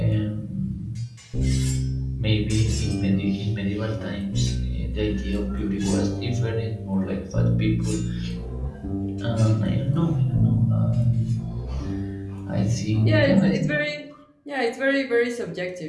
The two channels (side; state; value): both; identical; correlation 1.00